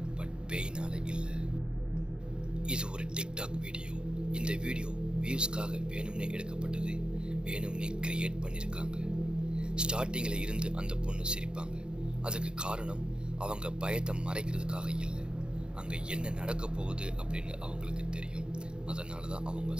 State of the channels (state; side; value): late; left; 0.049 ms